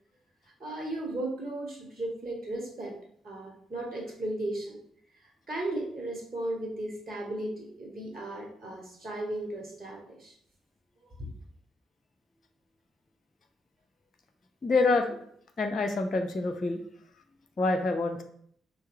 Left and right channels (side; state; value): both; normal; correlation 0.78